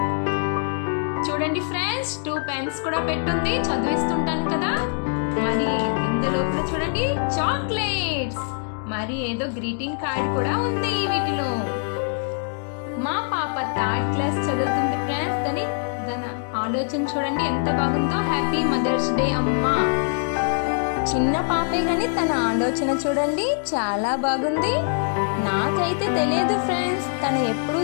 చూడండి ఫ్రెండ్స్, 2 పెన్స్ కూడా పెట్టుంది, చదివిస్తుంటాను కదా. మరి ఇందులోపల చూడండి చాక్లెట్స్, మరి ఏదో గ్రీటింగ్ కార్డ్ కూడా ఉంది వీటిలో. మా పాప 3rd క్లాస్ చదువుతుంది ఫ్రెండ్స్. తన ఆలోచన చూడండి ఎంత బాగుందో. హ్యాపీ మదర్స్ డే అమ్మా. చిన్న పాపే గాని తన ఆలోచన చూడండి చాలా బాగుంది. నాకైతే తెలియదు ఫ్రెండ్స్, తను ఎప్పుడు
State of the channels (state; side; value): silent; right; 63 dB below the other